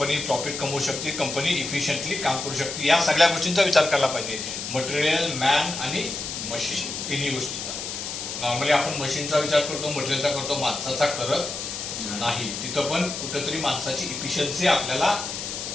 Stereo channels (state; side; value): noise; left; hiss, 6 dB below the sound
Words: प्रॉफिट कमवू शकते, कंपनी इफिशियंटली काम करू शकते. या सगळ्या गोष्टींचा विचार करायला पाहिजे. मटेरियल, मॅन आणि मशीन, तिन्ही गोष्टींचा. नॉर्मली आपण मशीनचा विचार करतो, मटेरियलचा करतो, माणसाचा करत नाही. तिथं पण कुठंतरी माणसाची इफिशियन्सी आपल्याला